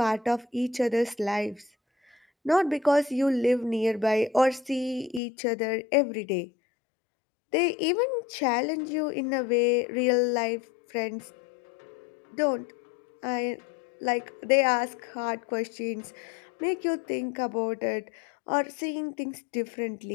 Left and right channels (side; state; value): right; drops out; at 5.2 s